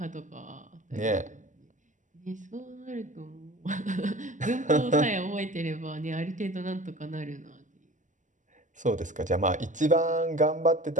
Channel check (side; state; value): left; late; 0.37 ms